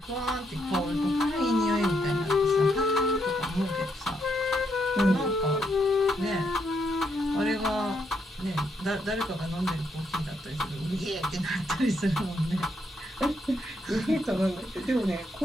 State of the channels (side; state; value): both; normal; correlation 0.77